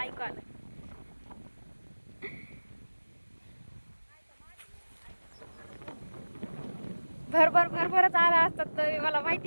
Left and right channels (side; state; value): both; inverted; correlation -1.00